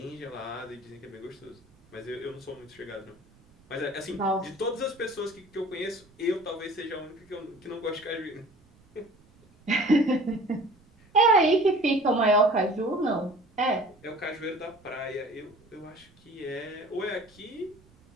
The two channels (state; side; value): noise; right; rumble, 29 dB below the sound